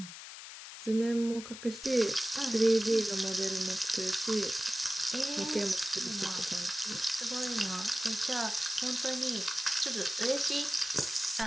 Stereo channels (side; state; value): left; noise; hiss, 12 dB below the sound